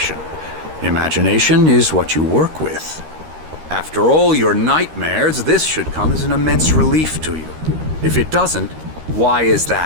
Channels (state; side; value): late; left; 13 ms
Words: Imagination is what you work with. After all your nightmares, this should come as an immense relief to you. If it doesn't, why is